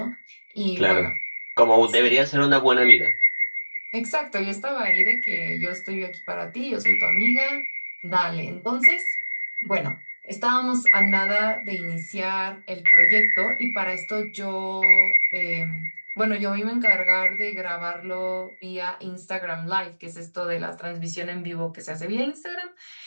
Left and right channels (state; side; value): inverted; both; correlation -1.00